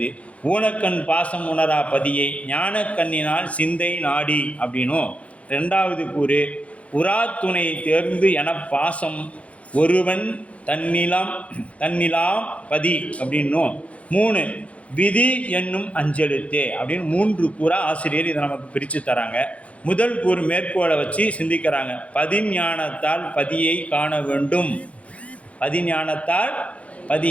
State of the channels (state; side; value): late; right; 0.064 ms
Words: ஊனக்கண் பாசம் உணரா பதியை ஞானக்கண்ணினால் சிந்தை நாடி அப்படின்னும், 2வது கூறு உராத்துணை தேர்ந்து என பாசம் ஒருவன் தன்னிலாம் பதி அப்படின்னும், 3 விதி என்னும் அஞ்செழுத்தே அப்படின்னு 3 கூறா ஆசிரியர் இதை நமக்கு பிரித்து தராங்க. முதல் கூறு மேற்கோளை வச்சு சிந்திக்கிறாங்க. பதிஞானத்தால் பதியை காண வேண்டும், பதிஞானத்தால்